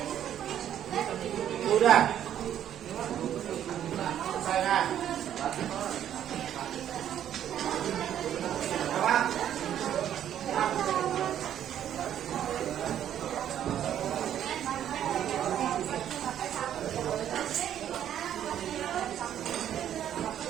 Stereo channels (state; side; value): quieter; left; 10.4 dB